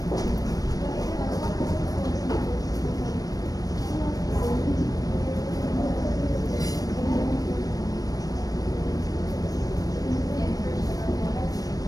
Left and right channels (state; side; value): late; right; 0.18 ms